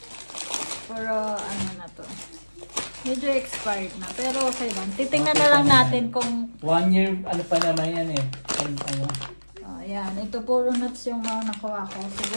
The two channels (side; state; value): both; inverted; correlation -1.00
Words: puro ano na to. Medyo expired na, pero okay lang. Titingnan na lang natin kung 1 year, ano pa naman yan eh. Ano? ayan, ito puro nuts yung mga nakuha ko.